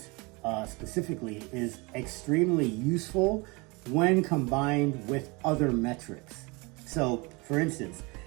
specifically, is extremely useful when combined with other metrics. So for instance,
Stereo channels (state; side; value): quieter; left; 27.2 dB